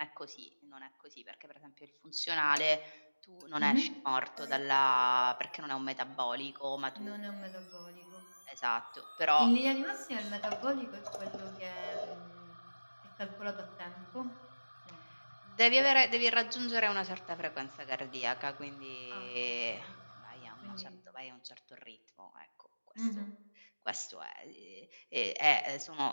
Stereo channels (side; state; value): both; inverted; correlation -1.00